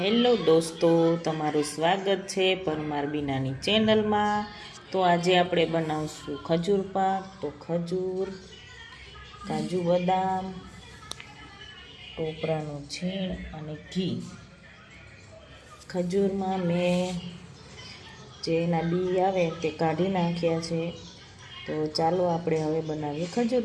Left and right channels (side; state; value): both; identical; correlation 1.00